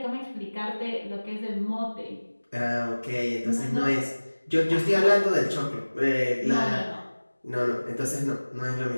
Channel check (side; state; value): both; inverted; correlation -1.00